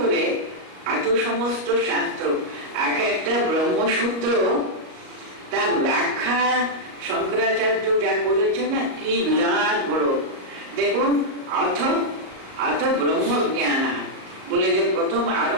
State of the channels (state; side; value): late; left; 37 ms